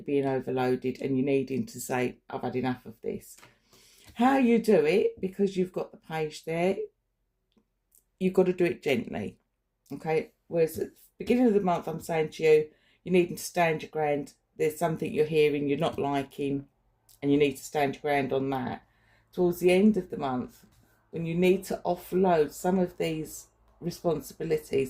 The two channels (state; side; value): identical; both; correlation 1.00